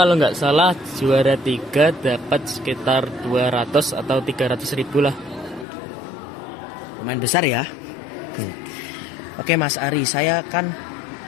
nggak salah juara 3 dapat sekitar 200 atau 300 ribu lah. Lumayan besar ya. Oke Mas Ari, saya kan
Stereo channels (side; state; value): right; drops out; at 5.7 s